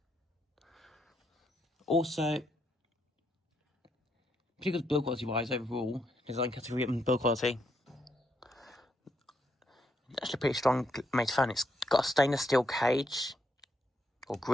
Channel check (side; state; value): both; normal; correlation 0.77